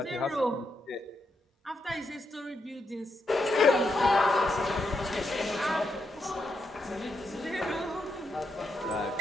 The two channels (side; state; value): both; normal; correlation 0.82